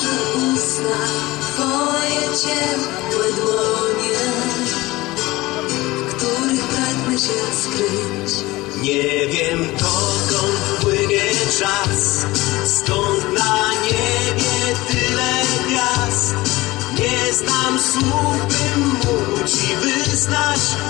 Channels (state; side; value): quieter; right; 19.8 dB